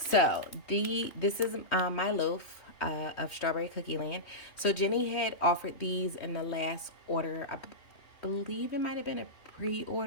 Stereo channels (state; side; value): late; right; 3.1 ms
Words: this is my loaf of Strawberry Cookie Land. So Jenny had offered these in the last order. I believe it might have been a